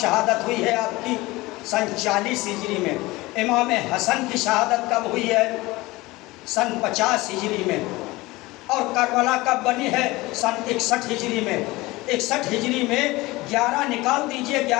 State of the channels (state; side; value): quieter; right; 20.7 dB